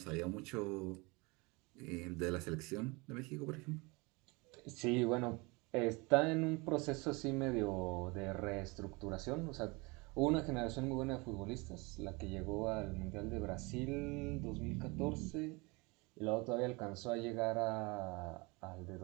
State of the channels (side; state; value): left; quieter; 26.6 dB